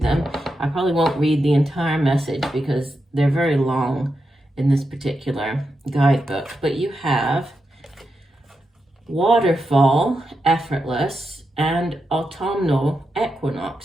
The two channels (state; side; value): normal; both; correlation 0.87